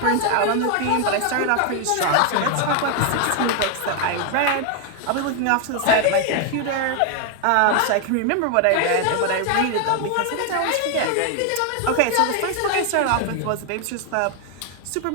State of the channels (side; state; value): both; different; correlation 0.00